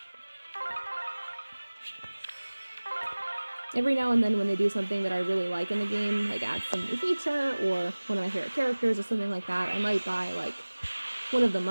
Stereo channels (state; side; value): inverted; both; correlation -1.00